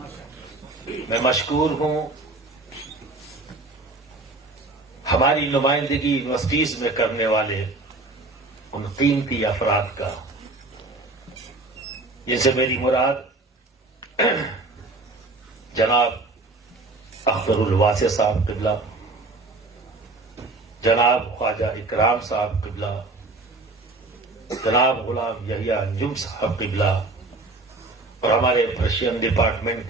میں مشکور ہوں ہماری نمائندگی یونیورسٹیز میں کرنے والے ان قیمتی افراد کا، جن سے میری مراد جناب اختر الواسع صاحب قبلہ، جناب خواجہ اکرام صاحب قبلہ، جناب غلام یحییٰ انجم صاحب قبلہ، اور ہمارے پرشین ڈپارٹمنٹ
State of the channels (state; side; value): quieter; left; 3.2 dB